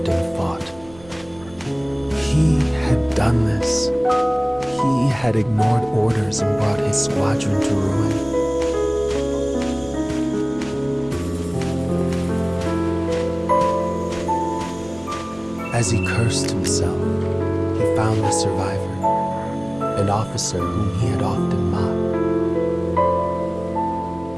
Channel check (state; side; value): noise; right; rumble, 23 dB below the sound